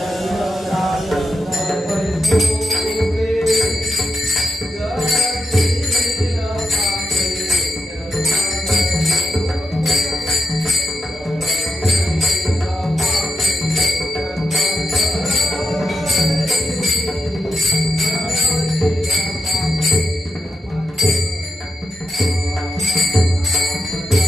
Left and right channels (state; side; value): normal; both; correlation 0.85